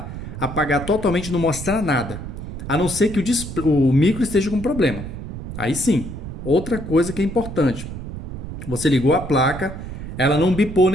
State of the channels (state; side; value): noise; right; rumble, 9 dB below the sound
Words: Apagar totalmente não mostrar nada. A não ser que o micro esteja com problema. Aí sim. Outra coisa que é importante. Você ligou a placa, ela não bipou